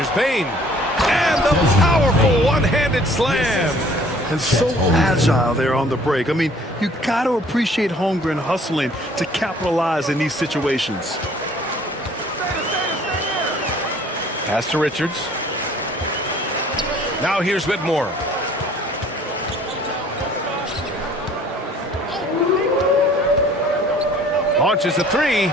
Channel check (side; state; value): both; normal; correlation 0.55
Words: Bain. And the powerful one-handed slam. And so agile there on the break. I mean, you got to appreciate Holmgren hustling to capitalize in these situations. Pass to Richards. Now here's Whitmore. Launches a three.